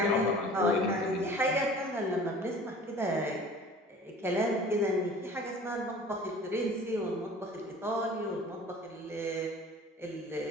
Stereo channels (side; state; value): both; normal; correlation 0.45